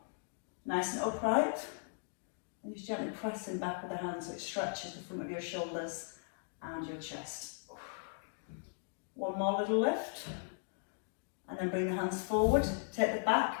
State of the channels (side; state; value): right; silent; 53 dB below the other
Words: nice and upright. And just gently pressing back with the hands so it stretches the front of your shoulders and your chest. One more little lift. And then bring the hands forward. Take the back